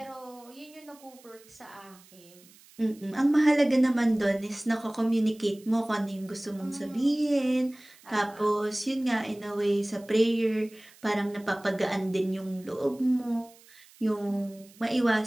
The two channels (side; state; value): right; noise; hiss, 25 dB below the sound